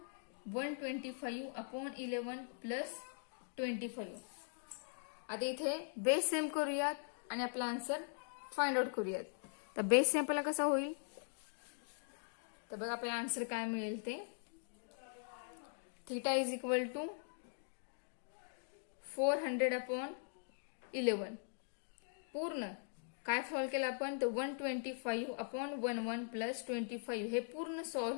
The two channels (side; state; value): right; silent; digital silence